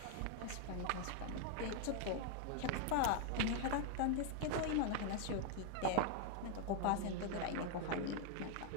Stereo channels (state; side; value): different; both; correlation 0.00